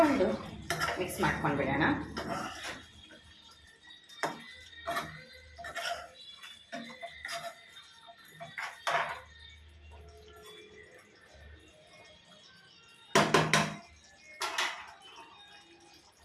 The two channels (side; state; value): both; identical; correlation 1.00